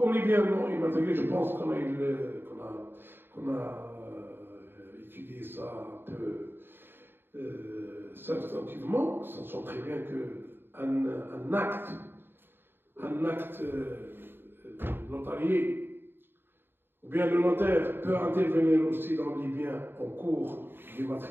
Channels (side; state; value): left; late; 0.10 ms